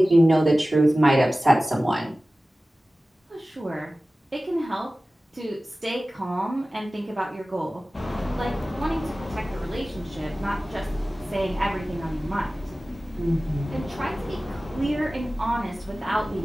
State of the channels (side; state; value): both; normal; correlation 0.97